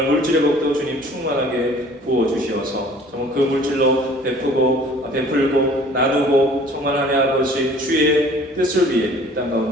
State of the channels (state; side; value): normal; both; correlation 0.51